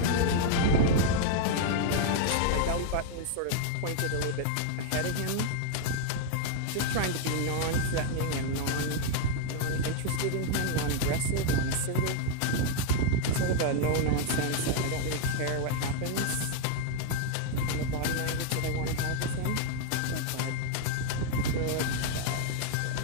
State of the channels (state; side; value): different; both; correlation 0.00